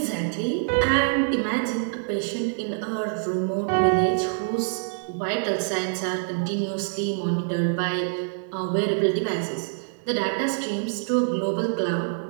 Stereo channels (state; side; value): silent; left; 61 dB below the other